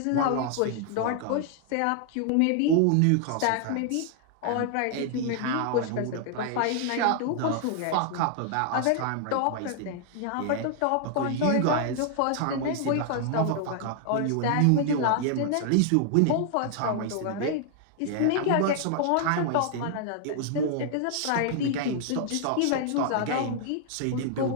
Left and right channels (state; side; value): different; both; correlation 0.00